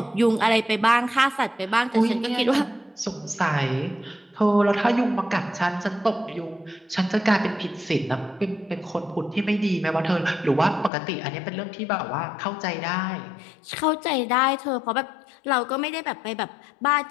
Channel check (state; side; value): drops out; right; at 10.9 s